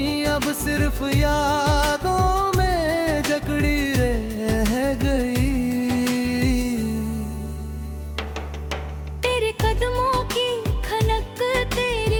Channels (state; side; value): identical; both; correlation 1.00